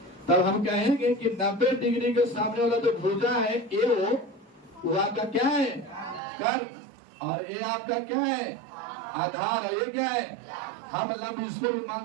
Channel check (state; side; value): drops out; left; at 6.2 s